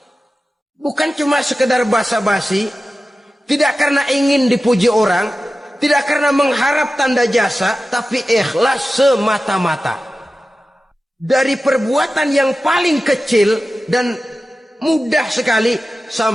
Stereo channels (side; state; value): both; normal; correlation 0.94